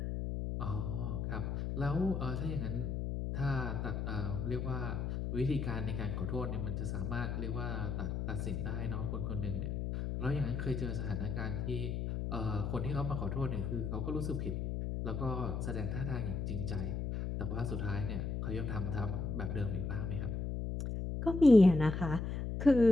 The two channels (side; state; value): left; noise; hum, 2 dB below the sound